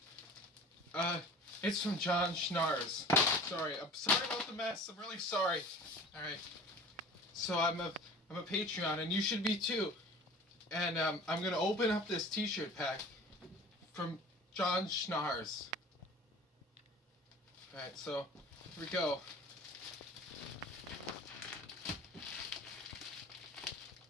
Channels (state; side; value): normal; both; correlation 0.42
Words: It's from John Schnars. I'm sorry about the mess. I'm really sorry. All right. So I'm a Patreon, and you should be too. And I'm gonna open up this T-shirt pack from John Schnars. All right. So here we go.